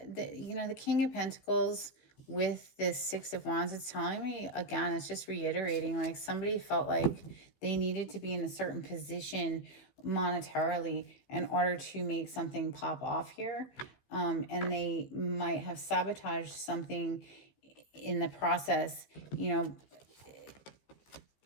the King of Pentacles with this Six of Wands, it's telling me, again, it's just reiterating, like somebody felt like they needed to be in a certain position monetarily in order to make something pop off here. And they might have sabotaged something in the process,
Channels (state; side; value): late; right; 15 ms